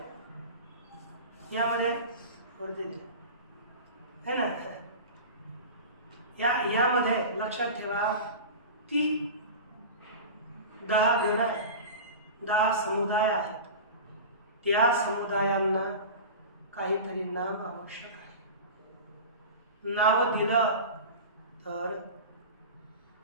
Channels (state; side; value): inverted; both; correlation -0.31